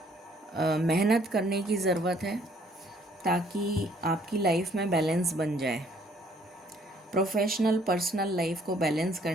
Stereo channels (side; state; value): both; normal; correlation 0.62